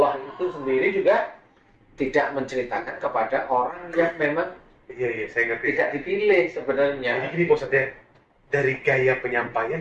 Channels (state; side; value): identical; both; correlation 1.00